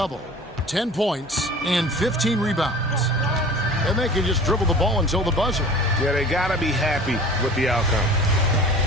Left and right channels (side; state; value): both; normal; correlation 0.42